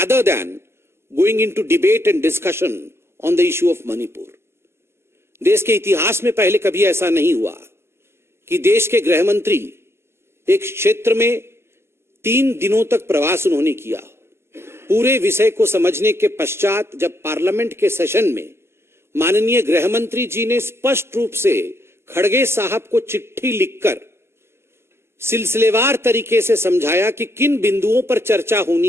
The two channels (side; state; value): left; late; 0.12 ms